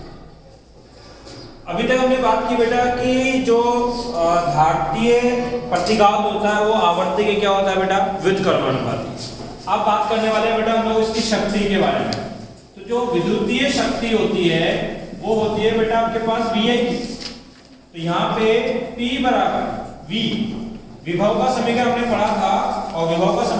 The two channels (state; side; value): identical; both; correlation 1.00